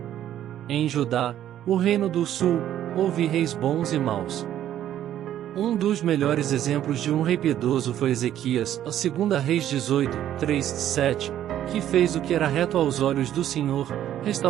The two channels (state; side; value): quieter; left; 11.5 dB